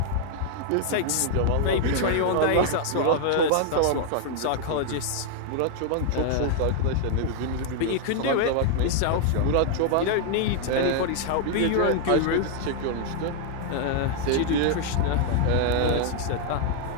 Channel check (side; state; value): both; different; correlation 0.00